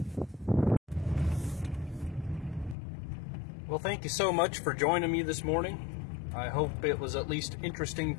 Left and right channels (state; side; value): drops out; right; at 2.8 s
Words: Well, thank you so much for joining me this morning. I hope it was at least interesting